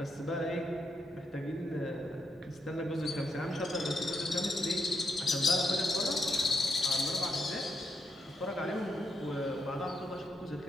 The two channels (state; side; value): normal; both; correlation 0.80